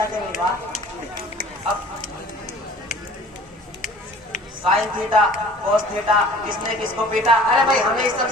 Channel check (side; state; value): both; normal; correlation 0.48